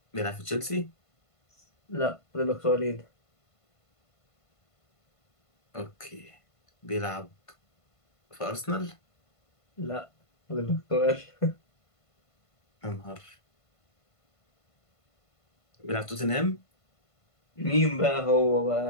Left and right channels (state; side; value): late; right; 1.5 ms